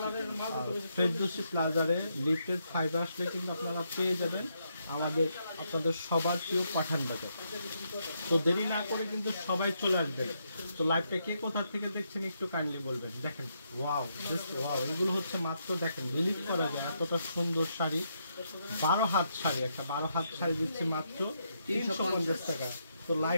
ফেরদৌসী প্লাজারে লিফটের 5 আসলে কিন্তু আপনারা পেয়ে যাবেন আপনাদের সবার প্রিয় পাঠান বাজার। তো দেরি না করে কিন্তু সবাই চলে আসবেন। তো লাইভটা কে কোথা থেকে দেখছেন একটু কাইন্ডলি বলবেন। দেখেন, ওয়াও, এগুলো হচ্ছে মাত্র দেখেন বিলিভ করা যায় এতটা সুন্দর শাড়ি। 12 হাত শাড়ি, একটা 12 হাত শাড়ি দিচ্ছে মাত্র 350 টাকা। তো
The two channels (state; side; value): inverted; both; correlation -0.79